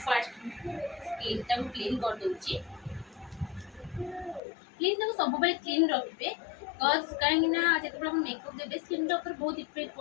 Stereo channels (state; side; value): drops out; right; at 4.4 s